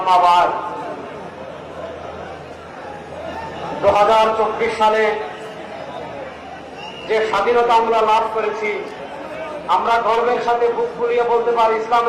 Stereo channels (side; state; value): both; identical; correlation 1.00